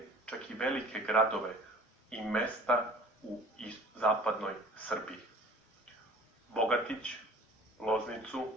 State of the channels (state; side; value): normal; both; correlation 0.48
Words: čak i velike gradove i mesta u zapadnoj Srbiji. Bogatić,